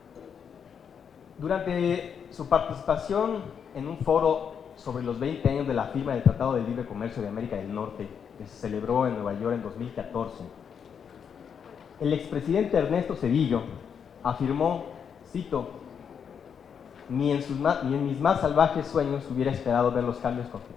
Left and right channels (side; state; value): right; quieter; 7.3 dB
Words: Durante su participación en un foro sobre los 20 años de la firma del Tratado de Libre Comercio de América del Norte, que se celebró en Nueva York en 2014, el expresidente Ernesto Zedillo afirmó, cito, ni en mis más salvajes sueños hubiera esperado ver los cambios